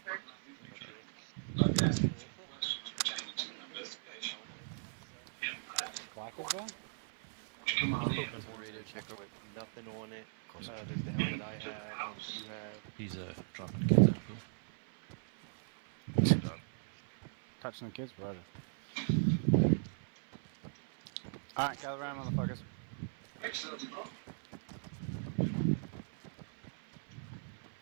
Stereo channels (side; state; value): left; silent; 52 dB below the other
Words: pretty much it. Yeah. I mean, there's different helmets and such. Clackers there? He's pooping. Radio checker. With nothing on it. There's the helmet I have, one that you have. He's dropping the kids at the pool. Touching the kids, brother. Alright, gather around, motherfuckers.